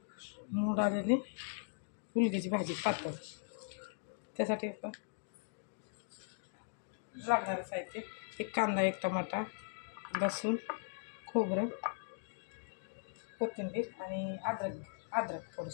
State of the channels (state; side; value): silent; right; digital silence